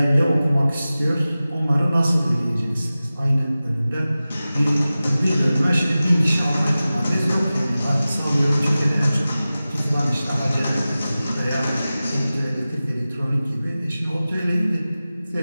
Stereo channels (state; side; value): inverted; both; correlation -0.96